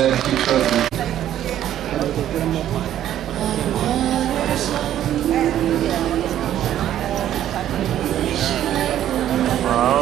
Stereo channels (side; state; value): left; quieter; 11.6 dB